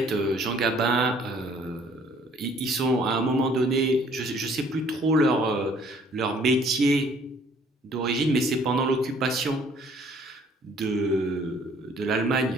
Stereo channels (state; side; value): normal; both; correlation 0.58